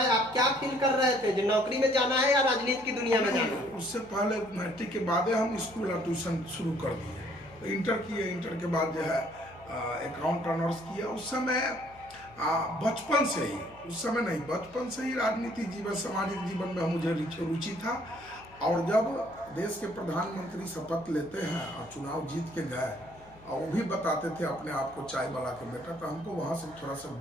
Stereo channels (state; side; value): noise; left; hum, 24 dB below the sound